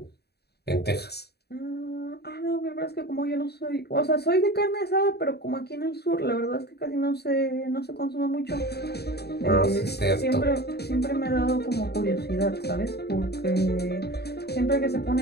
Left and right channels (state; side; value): late; right; 0.47 ms